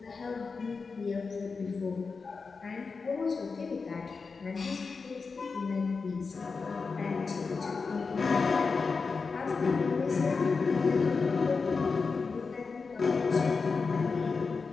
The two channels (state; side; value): quieter; right; 4.7 dB